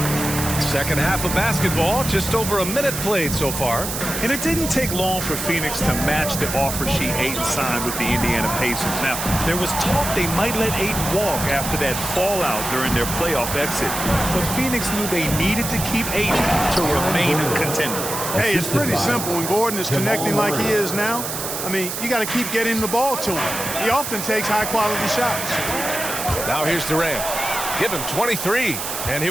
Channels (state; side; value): noise; right; hiss, 5 dB below the sound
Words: Second half of basketball, just over a minute played so far. And it didn't take long for Phoenix to match the offer sheet Ayton signed with the Indiana Pacers. Now, there was talk they might let Ayton walk after that fallout during their playoff exit. But Phoenix knew they needed to keep Ayton to remain a contender. Hey, it's pretty simple. When Gordon is connecting like he is now, I mean, you got to keep getting the ball to him. He often takes high-quality shots. Now here's Durant. Give him 23. And here